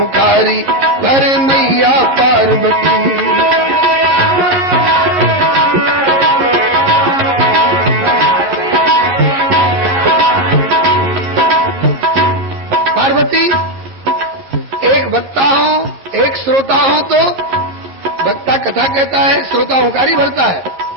कर मैया पार्वती। पार्वती एक वक्ता हूँ, एक श्रोता हूँ, तो वक्ता कथा कहता है, श्रोता हुंकारी भरता है।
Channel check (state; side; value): late; left; 11 ms